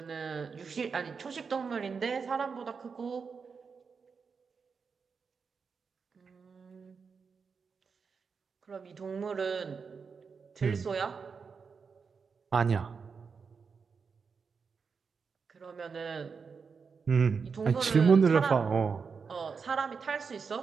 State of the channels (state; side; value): quieter; left; 5.5 dB